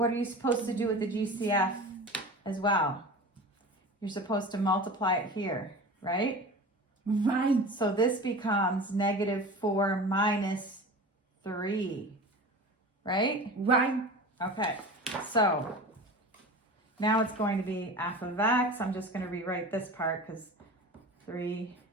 are you supposed to do with the GCF as well? You're supposed to multiply it here, right? Right. So this becomes negative 4 minus 3, right? Right. Okay, so now it's going to be f of x. I'm just going to rewrite this part because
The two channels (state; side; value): normal; both; correlation 0.34